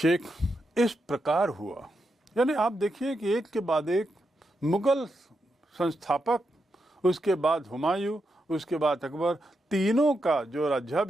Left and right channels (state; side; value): normal; both; correlation 0.85